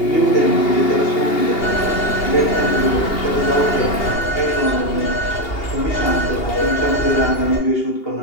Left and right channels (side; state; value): right; late; 2.8 ms